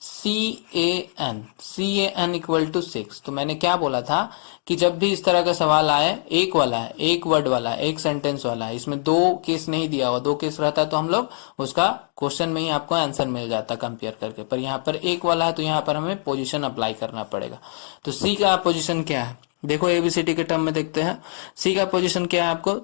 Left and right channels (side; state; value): right; silent; digital silence